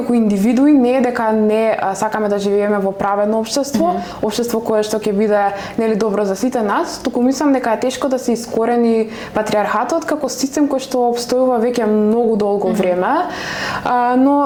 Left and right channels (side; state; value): both; identical; correlation 1.00